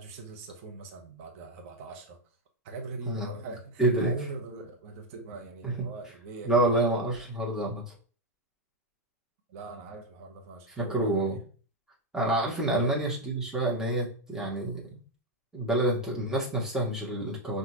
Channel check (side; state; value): both; normal; correlation 0.05